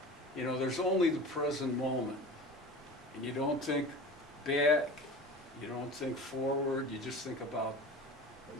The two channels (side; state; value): both; normal; correlation 0.36